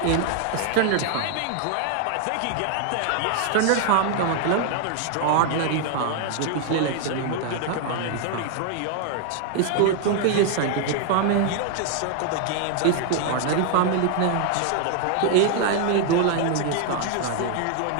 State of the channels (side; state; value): both; different; correlation 0.00